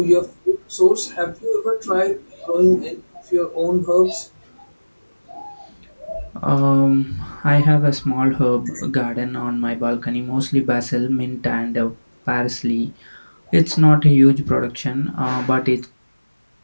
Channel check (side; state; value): both; inverted; correlation -1.00